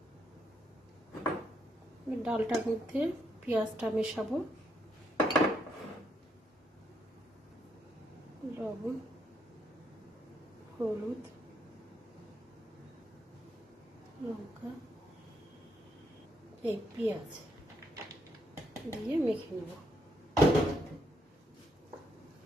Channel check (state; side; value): normal; both; correlation 0.75